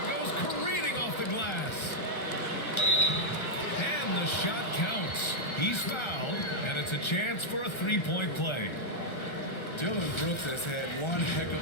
goes careening off the glass. And the shot counts. He's fouled, and it's a chance for a 3-point play. Dillon Brooks has had one heck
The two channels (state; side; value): late; right; 1.3 ms